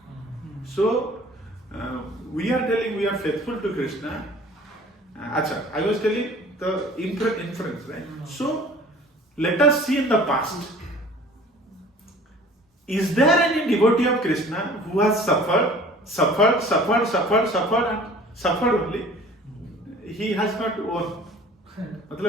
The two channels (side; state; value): both; normal; correlation 0.47